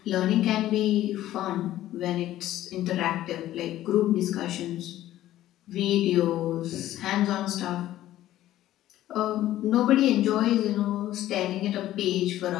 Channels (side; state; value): right; quieter; 13.9 dB